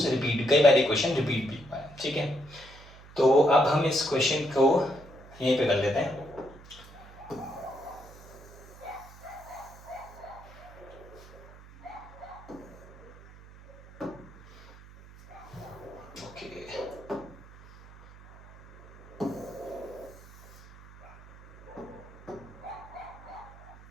रिपीट, कई बार ये क्वेश्चन रिपीट भी हुआ है। ठीक है, तो अब हम इस क्वेश्चन को यहीं पे कर लेते हैं।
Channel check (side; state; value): right; noise; hum, 20 dB below the sound